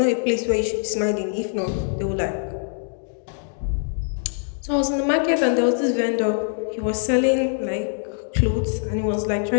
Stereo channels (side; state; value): right; silent; 63 dB below the other